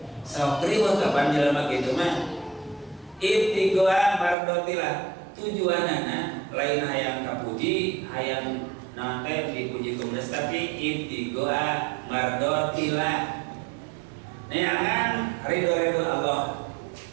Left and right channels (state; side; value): drops out; left; at 4.4 s